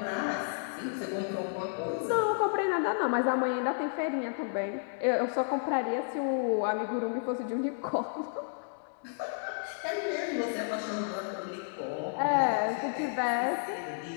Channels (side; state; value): right; silent; digital silence